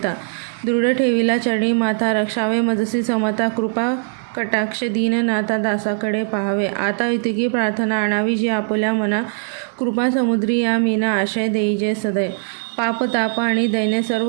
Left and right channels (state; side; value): silent; left; digital silence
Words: दृढ ठेविला चरणी माथा रक्षावे मजसी समता कृपा कटाक्ष दीननाथा दासाकडे पाहावे आता इतकी प्रार्थना आणावी जी आपुल्या मना कृपा समुद्री या मीना आशय देई जे सदैव पाप ताप आणि दैन्य